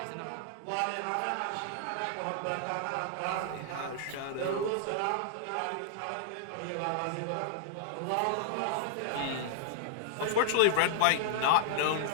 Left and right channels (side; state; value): both; different; correlation -0.01